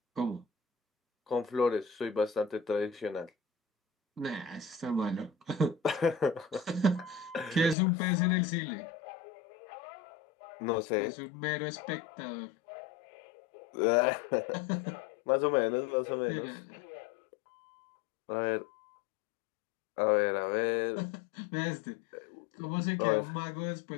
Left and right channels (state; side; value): drops out; right; at 7.8 s